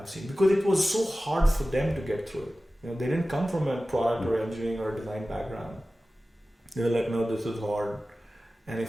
seen, because it was so hard for them to get through it. They didn't come from a product or engineering or design background. They were like, no, this is hard. And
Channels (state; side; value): normal; both; correlation 0.95